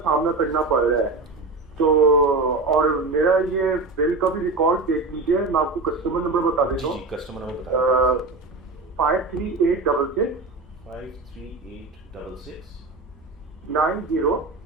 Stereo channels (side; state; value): left; quieter; 3.5 dB